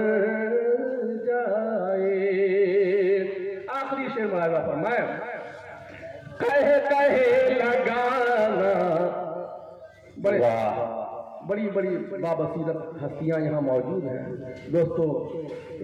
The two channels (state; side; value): identical; both; correlation 1.00